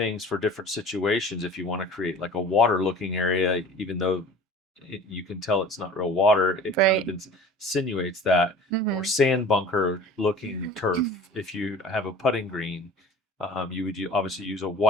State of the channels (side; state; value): both; normal; correlation 0.43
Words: for different situations. If you want to create like a water looking area, even though you can tell it's not real water, it kind of Right. insinuates that. Or Mm-hmm. sand bunker looking turf, if you have a putting green, you would obviously use a